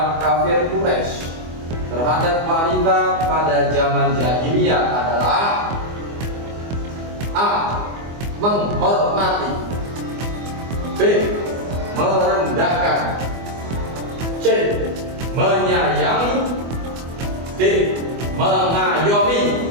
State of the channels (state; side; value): late; left; 24 ms